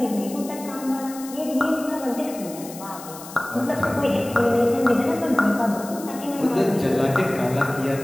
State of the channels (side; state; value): left; noise; hiss, 15 dB below the sound